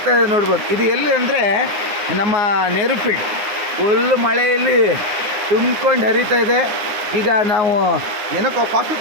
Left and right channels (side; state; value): left; late; 9.7 ms